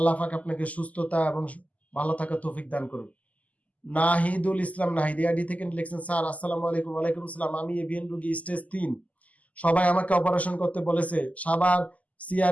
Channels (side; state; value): right; late; 0.074 ms